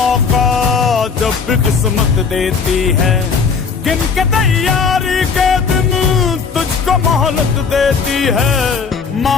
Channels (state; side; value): quieter; right; 5.5 dB